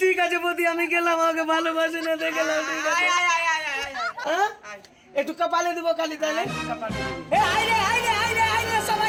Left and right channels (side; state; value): both; identical; correlation 1.00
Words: ঠিক আছে বৌদি আমি গেলাম আমাকে ভালোবাসে না দেখলাম ঠিক আছে আয় আয় আয় আয় আয় আয়। হ্যাঁ? আয়। একটু কপালে দেবো খালি তাহলে কপালে দেবো। এ আয় রে